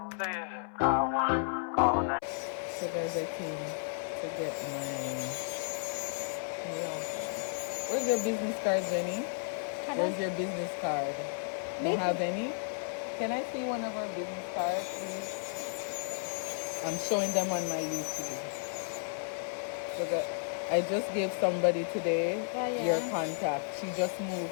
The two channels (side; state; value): right; silent; 56 dB below the other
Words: guys, I came to get my nails done. Where's your business card, Jenny? Where's your business card? Don't have any? Can I see one of our business cards, please? I'm showing them on my YouTube. So I just gave somebody today your contact. She just moved